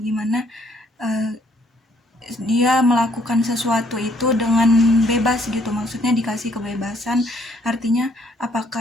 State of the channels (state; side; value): normal; both; correlation 0.66